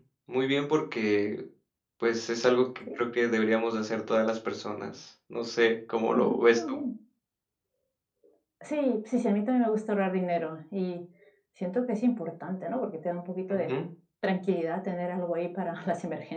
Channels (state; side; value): identical; both; correlation 1.00